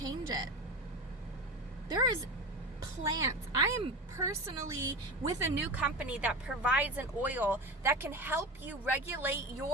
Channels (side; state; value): both; normal; correlation 0.26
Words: it. There is plants. I am personally with a new company that provides an oil that can help you regulate